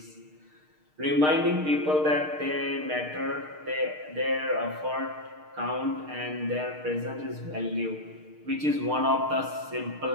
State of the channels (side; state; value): left; late; 6.5 ms